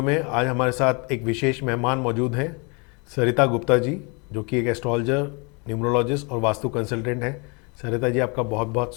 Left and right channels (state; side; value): quieter; right; 31.8 dB